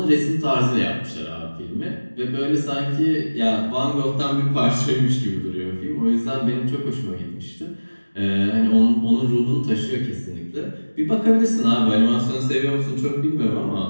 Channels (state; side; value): inverted; both; correlation -1.00